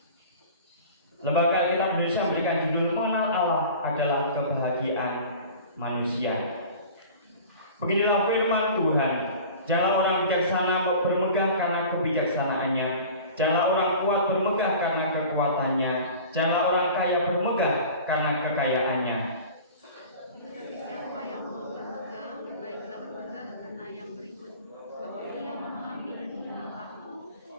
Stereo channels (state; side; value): inverted; both; correlation -0.40